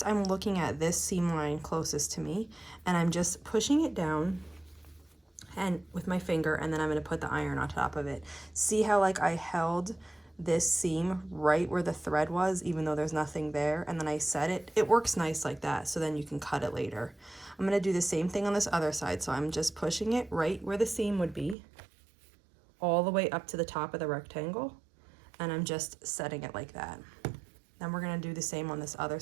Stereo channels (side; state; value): left; drops out; at 21.6 s